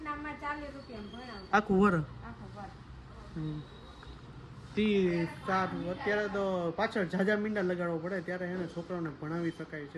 આખું વર. અત્યારે તો પાછળ ઝાઝા મીંડા લગાડવો પડે ત્યારે એને છોકરાઓને ભણાવી શકાય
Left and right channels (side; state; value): both; identical; correlation 1.00